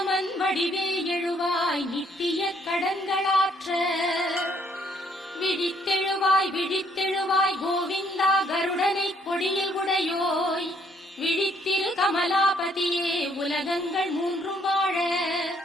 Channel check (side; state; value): both; normal; correlation 0.67